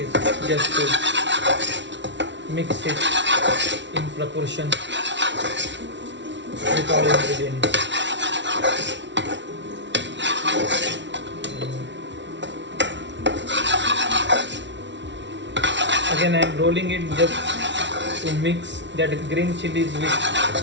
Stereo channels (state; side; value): late; left; 0.52 ms